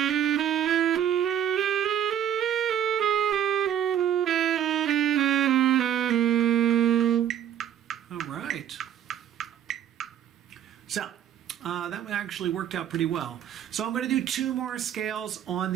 All right. So, that actually worked out pretty well. So I'm going to do 2 more scales on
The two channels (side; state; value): left; quieter; 10.0 dB